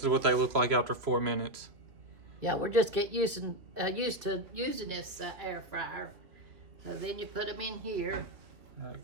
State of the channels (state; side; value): late; left; 2.8 ms